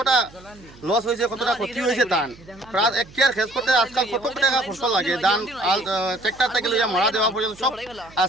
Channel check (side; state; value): right; noise; hum, 23 dB below the sound